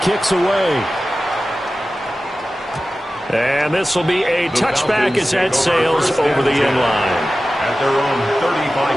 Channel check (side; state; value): both; normal; correlation 0.95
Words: kick's away. And this will be a touchback as that sails over the end line. At their own